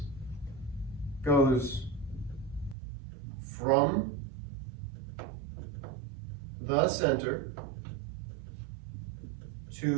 goes from the center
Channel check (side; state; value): left; drops out; at 2.8 s